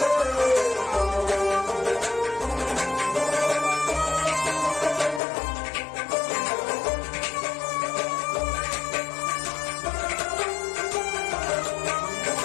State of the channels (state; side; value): drops out; right; at 5.2 s